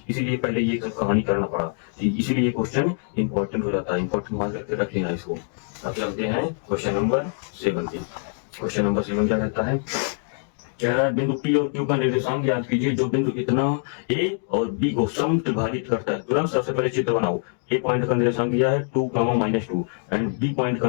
इसीलिए पहले ये सब कहानी करना पड़ा, इसीलिए ये क्वेश्चन इंपॉर्टेंट हो जाता है। इंपॉर्टेंट मान करके रख लेना इसको। अब चलते हैं क्वेश्चन नंबर 7 पे। क्वेश्चन नंबर 7 क्या कहता है, क्या है बिंदु P और Q का निर्देशांक ज्ञात कीजिए जो बिंदु इतना A और B को समत्रिभाजित करता है। तुरंत सबसे पहले चित्र बनाओ। A पॉइंट का निर्देशांक दिया है 2, -2 एंड B पॉइंट का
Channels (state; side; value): silent; right; 57 dB below the other